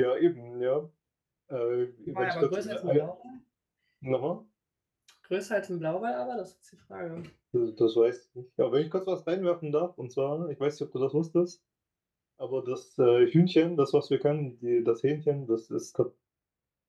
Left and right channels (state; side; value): identical; both; correlation 1.00